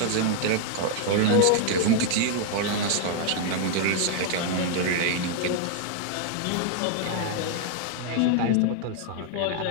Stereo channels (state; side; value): different; both; correlation 0.00